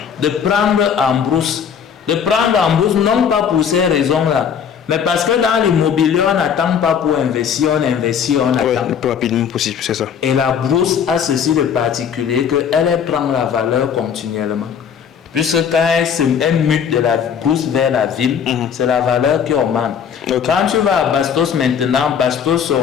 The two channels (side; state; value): right; quieter; 7.5 dB